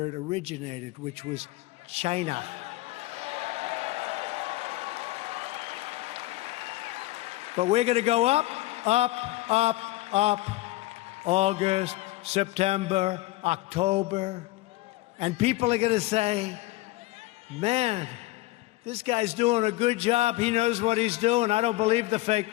it originated, which was China. But we're going to go up, up, up, up. August, September, October. And people are going to say, man, this guy's doing a good job. He knows what he's doing. I don't believe the fake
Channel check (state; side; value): quieter; right; 19.0 dB